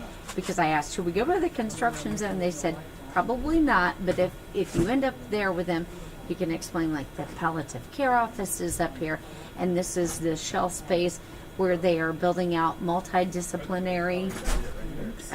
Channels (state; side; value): identical; both; correlation 1.00